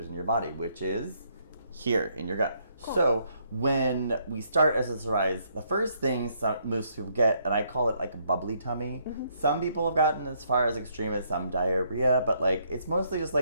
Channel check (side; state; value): both; inverted; correlation -0.71